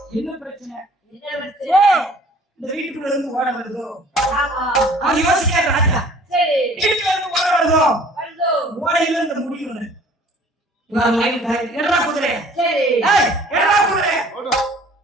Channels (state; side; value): normal; both; correlation 0.52